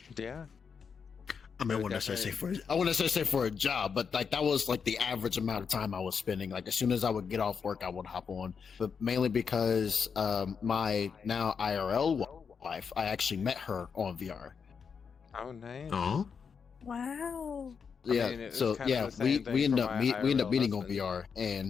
Yeah. I mean, I wouldn't necessarily say for a job, but like that was like the average amount of time I was spending. Like as soon as I would get off work, I would hop on. But mainly because my now IRL wife, I actually met her on VR. Oh, nice. Oh. Wow. Yeah. I mean, So yeah, we end up meeting on VR,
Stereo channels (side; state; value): right; quieter; 6.2 dB